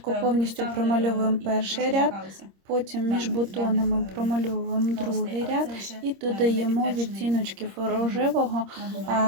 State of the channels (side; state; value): left; late; 26 ms